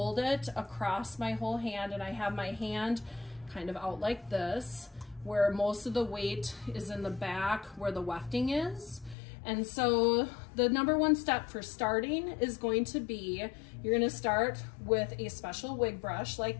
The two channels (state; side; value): drops out; right; at 9.2 s